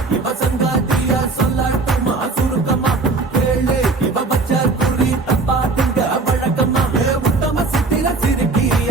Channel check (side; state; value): left; quieter; 3.8 dB